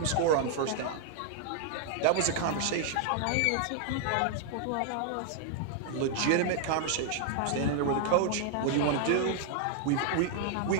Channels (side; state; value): both; different; correlation -0.01